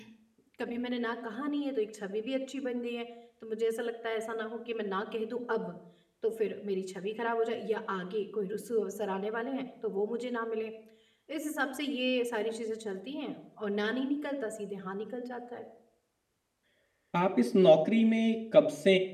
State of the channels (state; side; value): identical; both; correlation 1.00